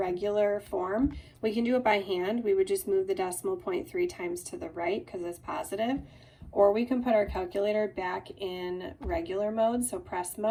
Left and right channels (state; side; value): identical; both; correlation 1.00